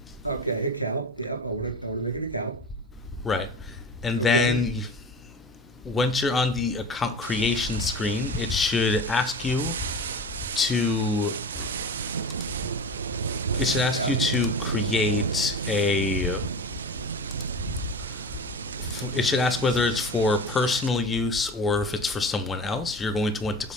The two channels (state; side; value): normal; both; correlation 0.33